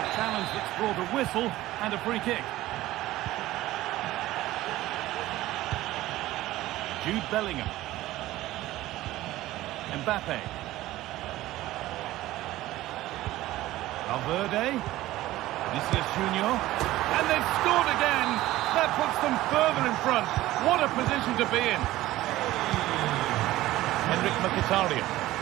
a challenge that's brought a whistle and a free kick. Jude Bellingham. Mbappe. Valverde. Vinicius Junior. And they've scored again. That puts them further in front. What a position to be in. Henrik Mkhitaryan.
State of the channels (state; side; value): quieter; left; 16.2 dB